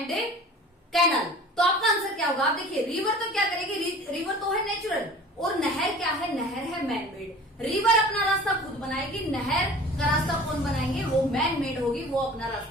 canal, तो आपका आंसर क्या होगा? आप देखिए, रिवर तो क्या करेगी? रिवर तो है नेचुरल, और नहर क्या है? नहर है मैन मेड. रिवर अपना रास्ता खुद बनाएगी, नहर का रास्ता कौन बनाएंगे? वो मैन मेड होगी, वो अपना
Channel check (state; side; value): normal; both; correlation 0.43